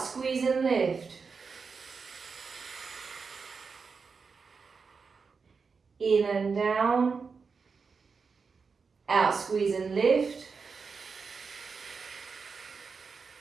squeeze and lift. In and down. Out, squeeze and lift.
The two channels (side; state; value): left; quieter; 5.1 dB